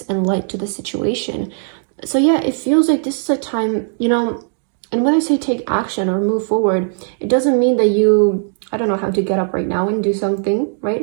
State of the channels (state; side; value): silent; left; 65 dB below the other